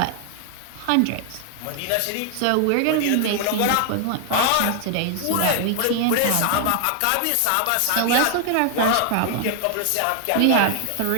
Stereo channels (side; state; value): both; different; correlation 0.00